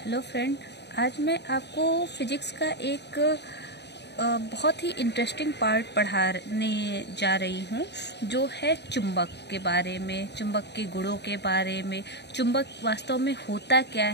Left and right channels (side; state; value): right; late; 0.50 ms